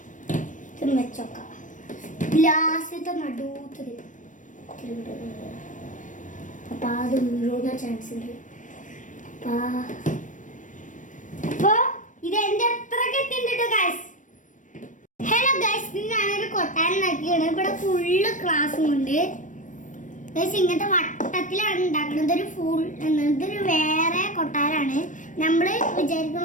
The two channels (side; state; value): right; late; 0.37 ms